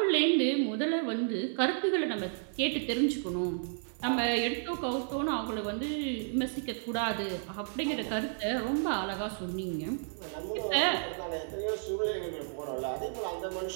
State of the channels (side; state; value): left; silent; digital silence